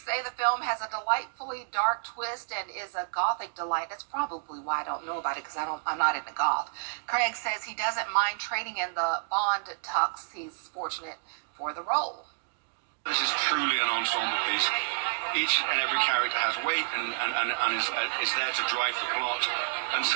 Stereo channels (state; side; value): silent; left; digital silence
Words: say the film has a delightfully dark twist and is a gothic delight. That's probably why I don't know about it, because I'm not into goth. Craig says he doesn't mind trading in the Bond tux. He's fortunate for the role. This is truly an ensemble piece. Each and every character has weight and is there to drive the plot. And